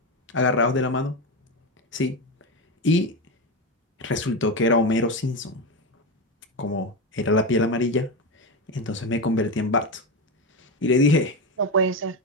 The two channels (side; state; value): both; normal; correlation 0.15